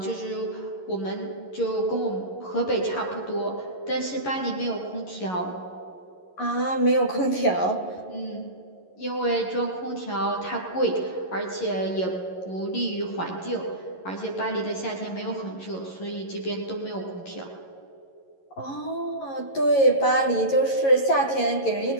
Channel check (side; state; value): right; late; 11 ms